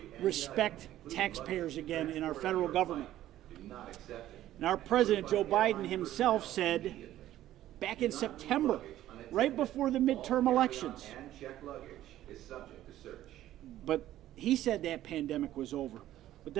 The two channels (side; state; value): left; quieter; 13.5 dB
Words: respect taxpayers again in our federal government. And our President, Joe Biden himself, said back in September, right before the midterm elections, but he said that pandemic was over. But